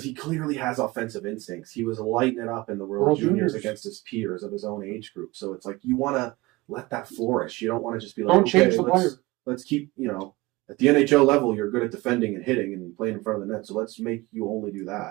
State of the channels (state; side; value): quieter; left; 21.5 dB